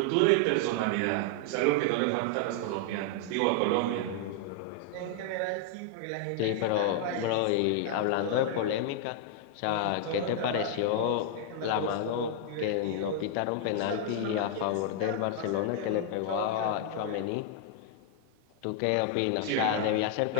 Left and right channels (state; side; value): different; both; correlation 0.00